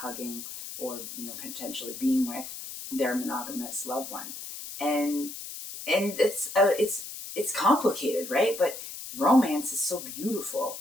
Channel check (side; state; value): left; noise; hiss, 10 dB below the sound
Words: hugging or, potentially being with their monogamous loved one. And it's complicated, right? But romance is so beautiful.